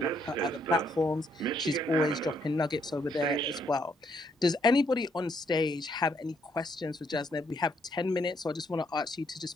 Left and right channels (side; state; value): both; normal; correlation 0.72